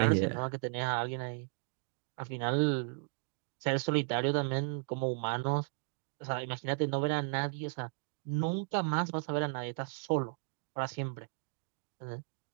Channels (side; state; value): left; silent; digital silence